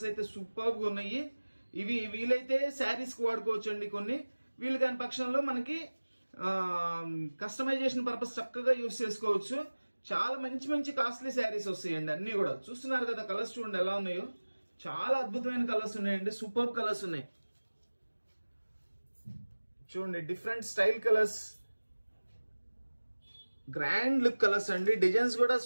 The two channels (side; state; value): both; inverted; correlation -1.00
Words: అయితే సూపర్గా ఉన్నాయి. ఇవి వీలైతే శారీస్కి వాడుకోవచ్చు అండి. కొన్ని వీలు కాని పక్షంలో మనకి కస్టమైజేషన్ పర్పస్ చక్కగా యూజ్ చేసుకోవచ్చు. చాలా మంచి మంచి కాస్ట్లీ శారీస్ వస్తాయండి. అన్ని కూడా చూస్తున్నారు కదా, కలర్స్ చూడండి ఎలా ఉన్నాయో. చాలా అద్భుతమైన కలర్స్ ఉన్నాయండి. సూపర్ కలర్స్ ఉన్నాయి చూడండి. Different style colours, grand look colours అండి. డిజైన్స్ కూడా